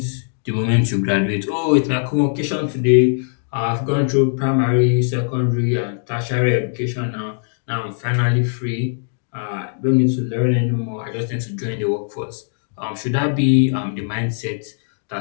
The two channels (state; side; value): silent; right; digital silence